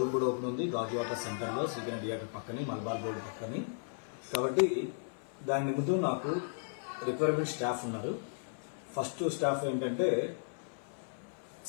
కూడా ఓపెన్ ఉంది గాజువాక సెంటర్లో, సీకెన్ థియేటర్ పక్కని, మల్బార్ రోడ్ పక్కని. కాబట్టి దాని నిమిత్తం నాకు రిక్వైర్మెంట్ స్టాఫ్ ఉన్నారు. ఫస్ట్ స్టాఫ్ ఏంటంటే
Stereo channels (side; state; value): right; silent; 54 dB below the other